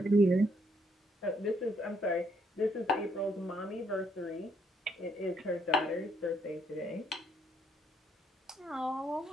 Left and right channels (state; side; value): normal; both; correlation 0.71